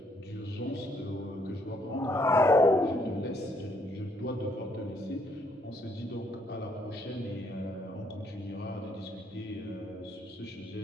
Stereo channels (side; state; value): both; normal; correlation 0.70